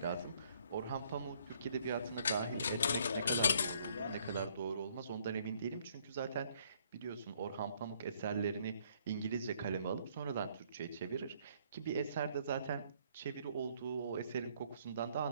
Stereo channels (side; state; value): both; inverted; correlation -0.65